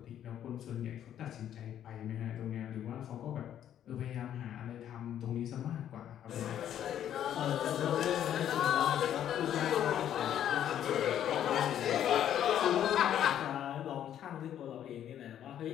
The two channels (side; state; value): right; quieter; 10.5 dB